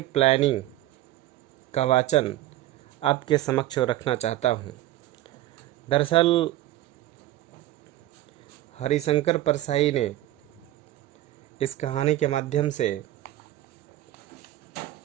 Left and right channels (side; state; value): left; quieter; 15.0 dB